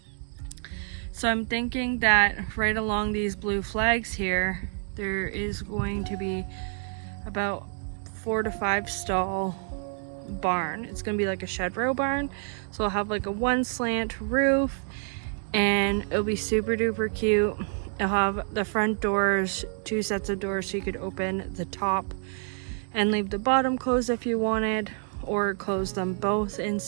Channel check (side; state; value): left; silent; 55 dB below the other